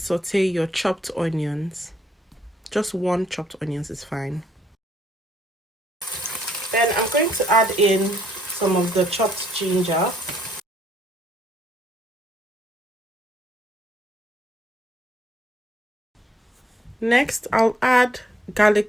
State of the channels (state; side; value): normal; both; correlation 0.70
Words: your chopped onions. Just 1 chopped onions is fine. Then I'm going to add in some of the chopped ginger. Next, I'll add